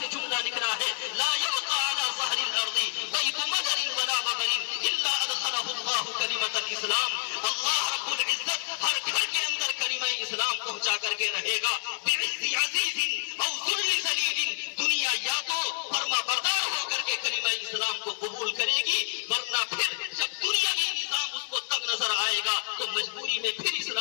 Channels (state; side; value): silent; right; 57 dB below the other